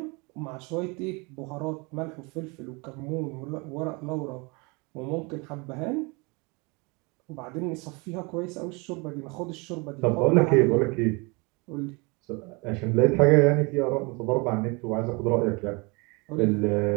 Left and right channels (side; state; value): left; quieter; 28.8 dB